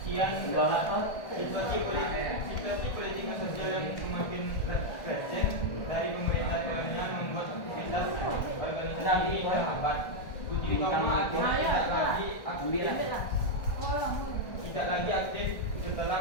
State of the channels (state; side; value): late; right; 1.5 ms